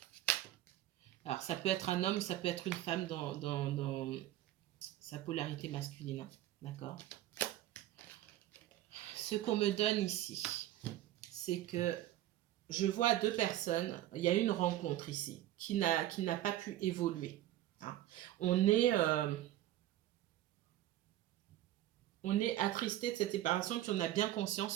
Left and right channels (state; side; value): quieter; left; 14.0 dB